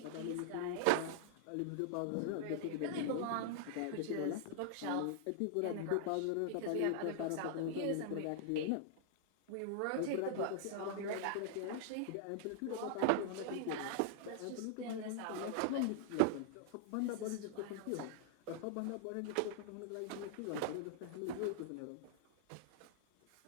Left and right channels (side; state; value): both; different; correlation -0.01